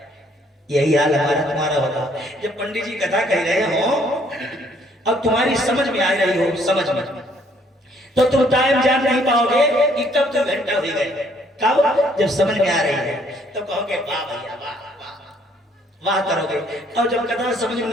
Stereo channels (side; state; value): both; normal; correlation 0.64